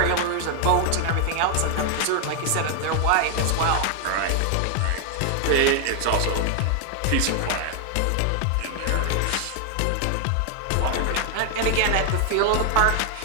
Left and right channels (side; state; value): both; different; correlation 0.00